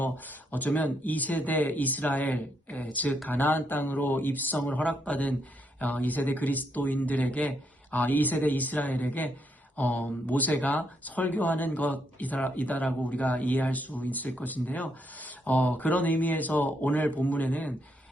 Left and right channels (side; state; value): both; normal; correlation 0.77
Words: 어쩌면 2세대 이스라엘, 즉 가나안 땅으로 입성을 허락받은 2세대 그리스도인들에게 2세대 이스라엘에게 모세가 설교하는 것이다라고 우리가 이해할 수 있을 것인데요. 그런 의미에서 오늘 본문에는